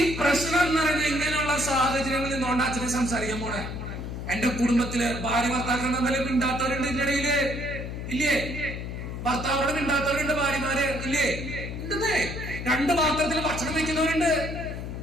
പ്രശ്നം എന്ന് പറയുന്നത്. ഇങ്ങനെയുള്ള സാഹചര്യങ്ങളിൽ നിന്നുകൊണ്ട് അച്ഛനെ സംസാരിക്കാൻ പോണേ. എന്റെ കുടുംബത്തില് ഭാര്യ ഭർത്താക്കൾ തമ്മിൽ മിണ്ടാത്തവരുണ്ട് ഇതിന്റെ ഇടയില് ഇല്ലേ? ഭർത്താവോട് മിണ്ടാത്തവരുണ്ട്, ഭാര്യമാര് ഇല്ലേ? ഉണ്ടെന്നേ. രണ്ട് പാത്രത്തിൽ ഭക്ഷണം വെക്കുന്നവരുണ്ട്.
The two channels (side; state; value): left; noise; hum, 6 dB below the sound